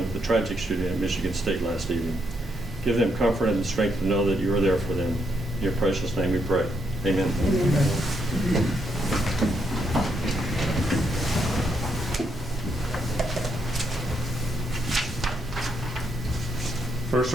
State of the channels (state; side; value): normal; both; correlation 0.77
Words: with the tragic shooting at Michigan State last evening. Give them comfort and the strength to know that you are there for them. In your precious name we pray. Amen. Amen. First